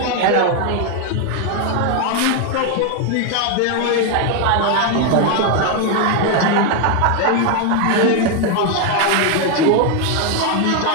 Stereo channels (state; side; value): different; both; correlation 0.01